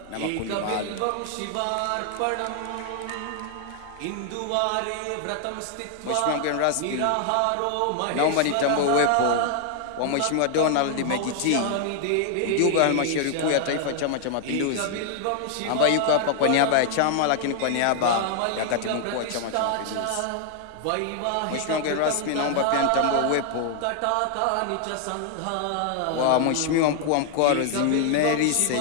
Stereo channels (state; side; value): different; both; correlation 0.00